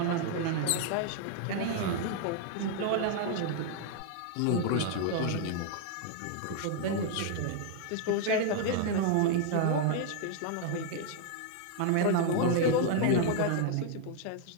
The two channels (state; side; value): different; both; correlation 0.00